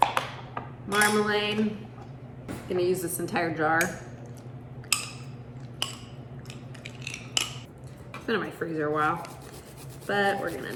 marmalade. I'm going to use this entire jar. It's been in my freezer a while. But we're gonna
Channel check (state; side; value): identical; both; correlation 1.00